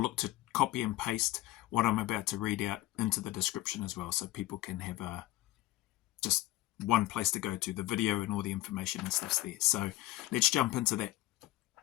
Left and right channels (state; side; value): quieter; right; 17.1 dB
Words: to copy and paste what I'm about to read out into the description as well, so people can have just one place to go to. The video and all the information and stuff's there. So let's jump into that.